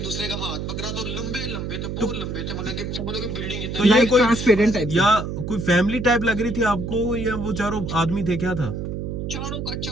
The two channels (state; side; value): noise; right; hum, 4 dB below the sound